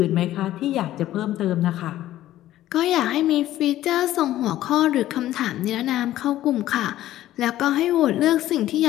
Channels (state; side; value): quieter; right; 13.9 dB